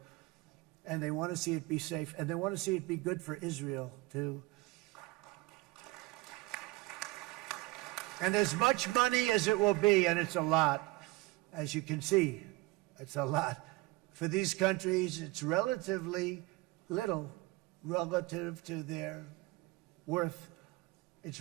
and they want to see it be safe, and they want to see it be good for Israel, too. And as much money as it will be, and it's a lot, as you can see, it's a lot. For these countries, it's relatively little relative to their worth. It's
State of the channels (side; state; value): left; quieter; 21.4 dB